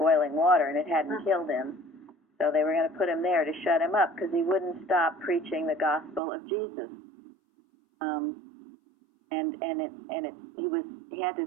water and it hadn't killed him. So they were going to put him there to shut him up because he wouldn't stop preaching the gospel of Jesus. He had to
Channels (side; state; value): left; drops out; at 6.2 s